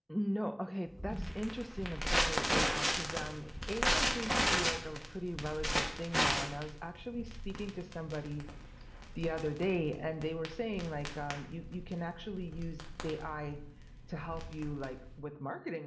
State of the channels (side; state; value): both; identical; correlation 1.00